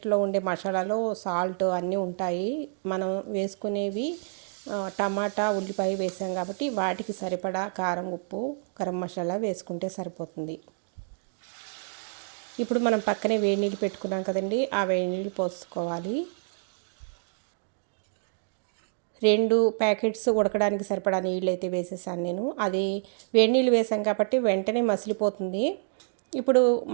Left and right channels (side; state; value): left; silent; 59 dB below the other